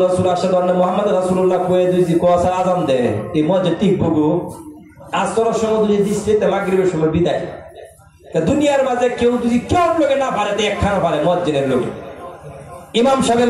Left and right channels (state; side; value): identical; both; correlation 1.00